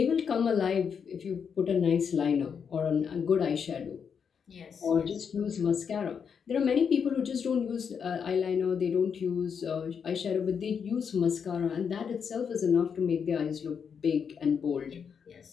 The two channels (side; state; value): right; quieter; 6.8 dB